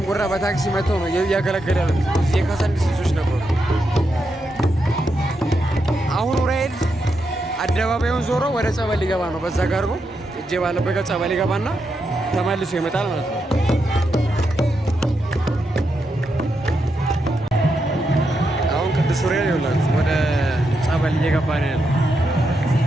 በታክሲ መጥተው ነው እያገለገለ ያሉት። እዚህ የካሳንዲስ ልጆች ነበሩ። አሁን ዑራኤል አደባባዩን ዞሮ ወደ ጸበል ሊገባ ነው። በዛ ጋር ነው እጄ ባለበት ጸበል ሊገባና ተመልሶ ይመጣል ማለት ነው። አሁን ቅዱስ ዑራኤል ይኸውላችሁ ወደ ጸበል እየገባ ነው ያለው።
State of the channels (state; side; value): normal; both; correlation 0.84